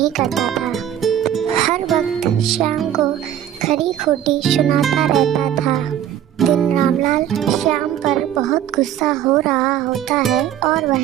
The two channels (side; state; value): left; quieter; 10.7 dB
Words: करता था। हर वक्त श्याम को खरी खोटी सुनाता रहता था। दिन रामलाल श्याम पर बहुत गुस्सा हो रहा होता है और